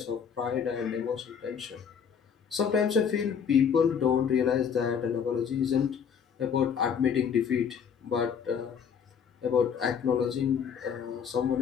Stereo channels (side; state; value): right; quieter; 7.2 dB